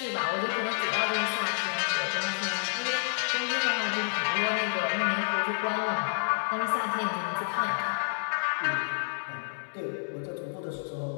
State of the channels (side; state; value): right; silent; 57 dB below the other